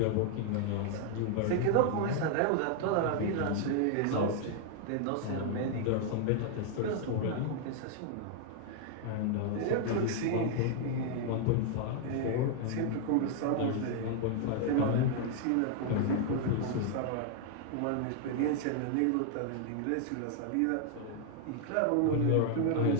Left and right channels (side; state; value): both; different; correlation 0.00